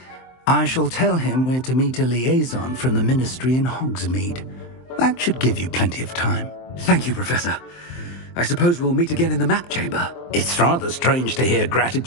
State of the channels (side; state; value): right; late; 23 ms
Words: I shall tell him where to meet a liaison from the Ministry in Hogsmeade. That should give you plenty of time. Thank you, Professor. I suppose we'll meet again in the map chamber. It's rather strange to hear